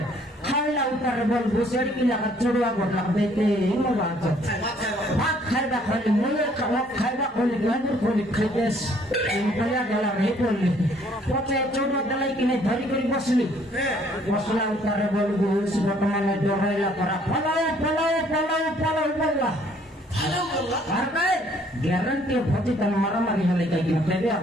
खाइला उतार बोल घुसेड़ी की लगा चुड़वा गोटला देते मोला बात খাইবা খালি মনে খাইবা খালি গাঁজর খালি খাইতেস বলিয়া গেলাম এই করলি পথে চৌড দেলাই কিনে ধরি করে বসলি বসলা উতারে বলবো বর্তমানে ডরাইলা করা ফলাও ফলাও ফলাও ফলাও বললা আর ভাই গ্যারান্টি ভোজি তার মারামারি হলে কাই কিনা দেবে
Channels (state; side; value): normal; both; correlation 0.62